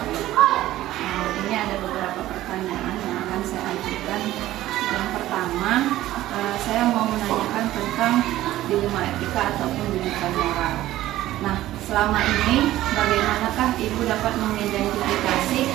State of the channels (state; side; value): quieter; left; 14.9 dB